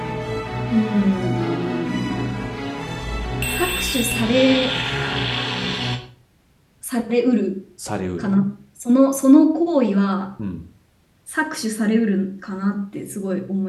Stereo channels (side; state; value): both; identical; correlation 1.00